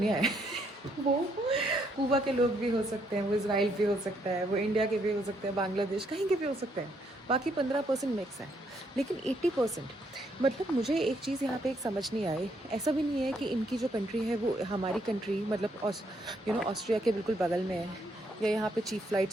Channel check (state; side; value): normal; both; correlation 0.73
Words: है वो कुबा के लोग भी हो सकते हैं, वो इसराइल भी हो सकता है, वो इंडिया के भी हो सकते हैं, बांग्लादेश कहीं के भी हो सकते हैं। बाकी 15% मिक्स है, लेकिन 80% मतलब मुझे एक चीज़ यहाँ पे एक समझ नहीं आई। ऐसा भी नहीं है कि इनकी जो कंट्री है वो हमारी कंट्री मतलब ऑस्ट्रिया के बिल्कुल बगल में है, या यहाँ पे चीप